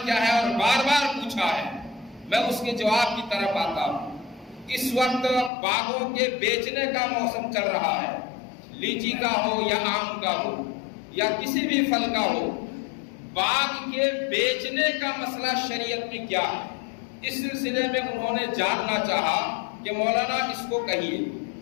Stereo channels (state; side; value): drops out; right; at 5.5 s